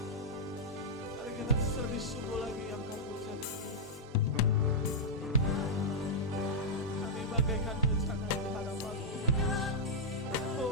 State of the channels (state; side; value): normal; both; correlation -0.06